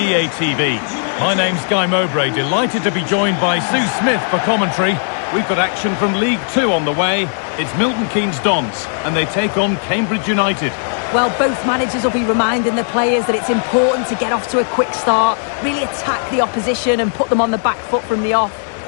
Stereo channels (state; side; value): silent; right; digital silence